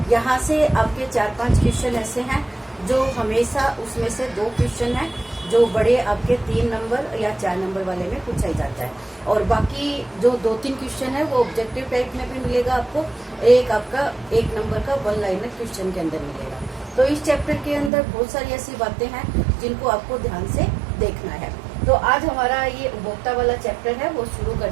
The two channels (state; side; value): drops out; left; at 17.9 s